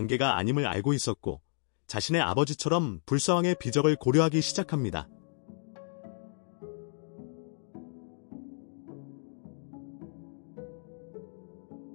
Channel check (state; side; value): silent; right; digital silence